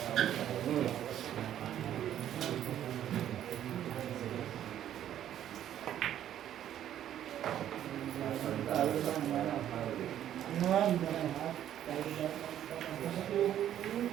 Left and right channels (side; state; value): left; quieter; 11.1 dB